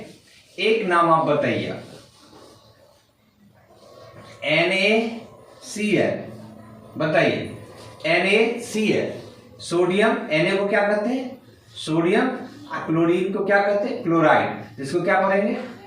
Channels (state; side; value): identical; both; correlation 1.00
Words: एक नाम आप बताइए। NaCl, बताइए NaCl। सोडियम, Na को क्या कहते हैं? सोडियम। क्लोरीन को क्या कहते हैं? क्लोराइड। जिसको क्या पढ़ेंगे?